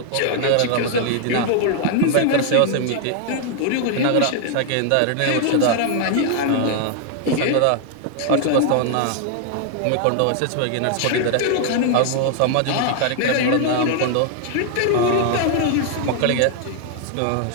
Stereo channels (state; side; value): different; both; correlation 0.00